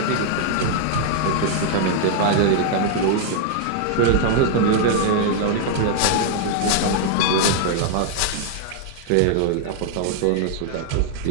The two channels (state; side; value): different; both; correlation -0.01